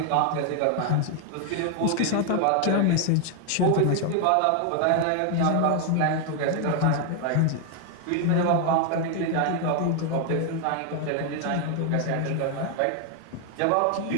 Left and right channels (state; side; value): different; both; correlation 0.01